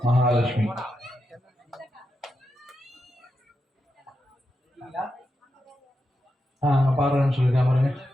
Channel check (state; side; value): normal; both; correlation 0.87